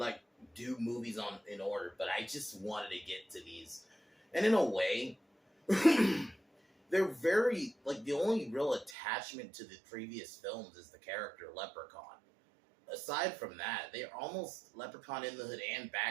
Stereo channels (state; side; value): drops out; left; at 9.0 s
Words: do movies in order, but I just wanted to get to these, and in a way, they're very like the only real attachment to the previous films is the character Leprechaun. Aside from that, they're almost Leprechaun in the Hood and